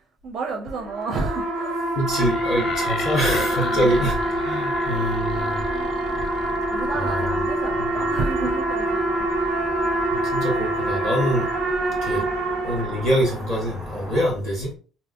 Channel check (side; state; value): both; normal; correlation 0.66